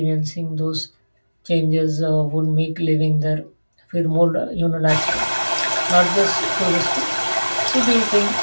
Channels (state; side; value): inverted; both; correlation -1.00